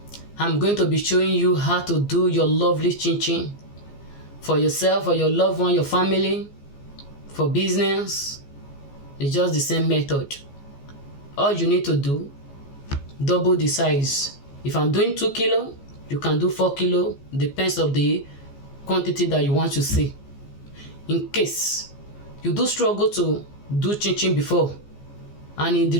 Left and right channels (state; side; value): late; right; 14 ms